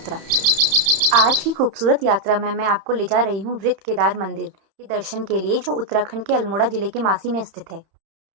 आज की खूबसूरत यात्रा में मैं आपको ले जा रही हूं वृत्त केदार मंदिर के दर्शन के लिए, जो उत्तराखंड के अल्मोड़ा जिले के मासी में स्थित है।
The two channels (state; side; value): late; left; 31 ms